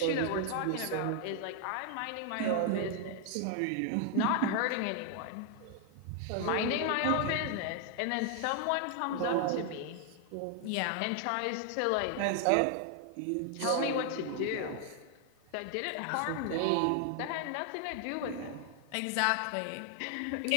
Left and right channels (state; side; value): different; both; correlation 0.00